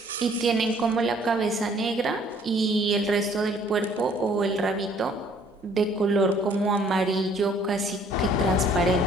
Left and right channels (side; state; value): both; normal; correlation 0.59